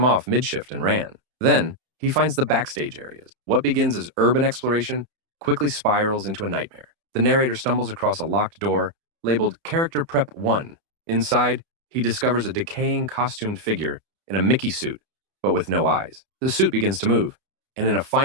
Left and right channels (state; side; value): late; left; 31 ms